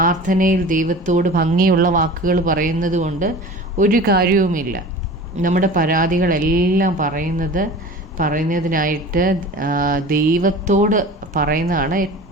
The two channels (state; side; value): normal; both; correlation 0.38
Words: ദൈവത്തോട് ഭംഗിയുള്ള വാക്കുകൾ പറയുന്നത് കൊണ്ട് ഒരു കാര്യവുമില്ല. നമ്മുടെ പരാതികളെല്ലാം പറയുന്നതിനായിട്ട് ദൈവത്തോട് പറയുന്നതാണ്